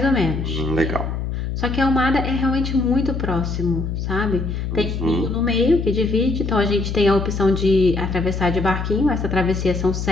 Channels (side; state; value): left; noise; hum, 3 dB below the sound